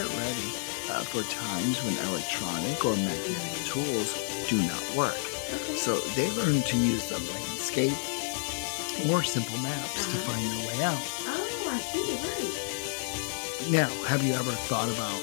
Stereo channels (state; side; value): silent; right; 58 dB below the other